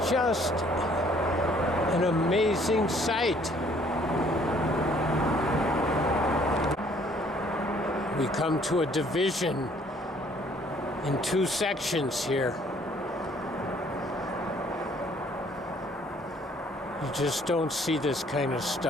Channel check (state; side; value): normal; both; correlation 0.61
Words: just an amazing sight. We come to a division in two sections here. You just don't see this kind of